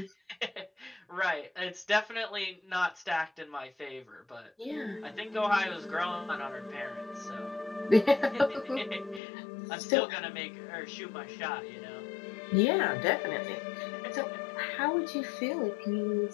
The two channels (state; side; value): drops out; right; at 9.2 s